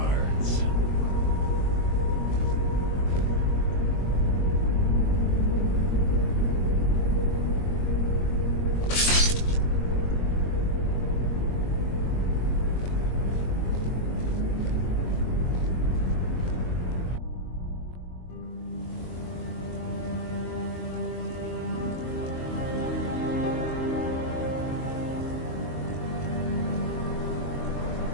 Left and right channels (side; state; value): right; late; 22 ms